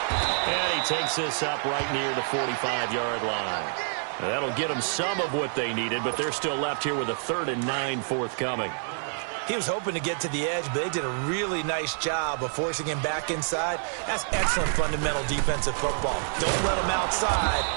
And he takes this up right near the 45-yard line. Now that'll get them some of what they needed, but they're still left here with a 3rd and 9 forthcoming. He was hoping to get to the edge, but they did a really nice job of forcing him back inside. That's excellent fundamental defensive football. Don't let them outside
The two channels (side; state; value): left; silent; 60 dB below the other